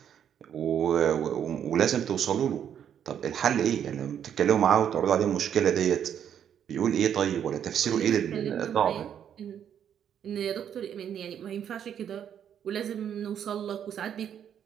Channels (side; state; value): left; quieter; 9.0 dB